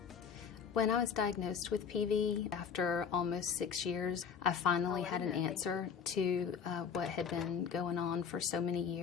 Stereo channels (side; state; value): right; quieter; 6.8 dB